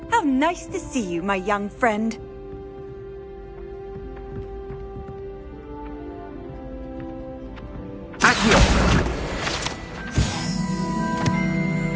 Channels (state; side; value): identical; both; correlation 1.00